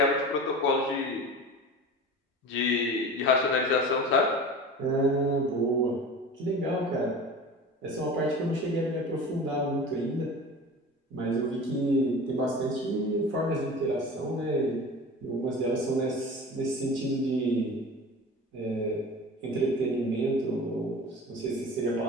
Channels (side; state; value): both; normal; correlation 0.35